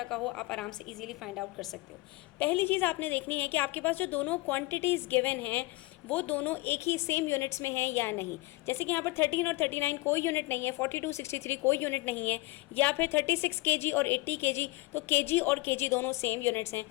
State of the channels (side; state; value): right; quieter; 21.9 dB